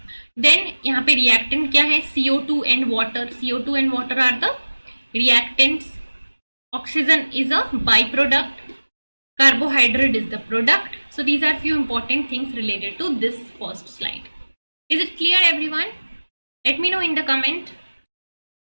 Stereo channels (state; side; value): inverted; both; correlation -1.00